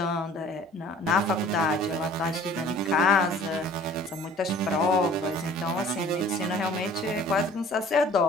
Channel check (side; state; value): both; normal; correlation 0.50